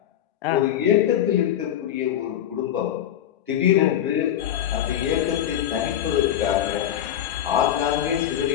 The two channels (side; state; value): right; quieter; 10.9 dB